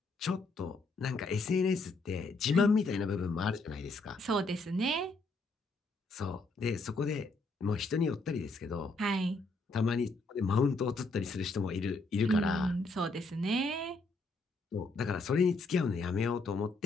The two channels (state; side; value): quieter; right; 3.3 dB